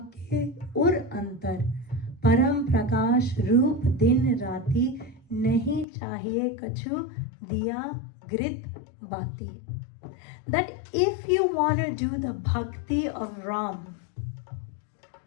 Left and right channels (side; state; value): right; drops out; at 5.9 s